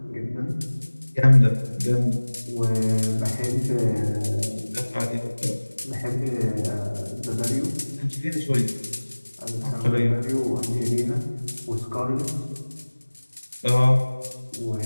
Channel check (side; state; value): both; inverted; correlation -1.00